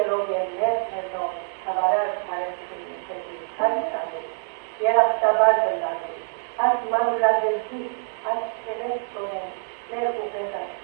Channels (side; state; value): left; silent; digital silence